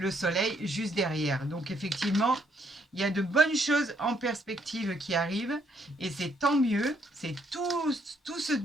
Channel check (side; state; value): both; normal; correlation 0.71